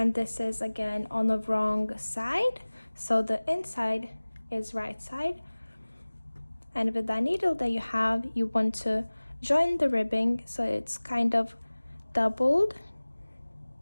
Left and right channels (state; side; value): inverted; both; correlation -1.00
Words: this is again on the wrong side, so the inside is right side. And with that needle that you have, you want to join the ribbing so it's kind of doubled,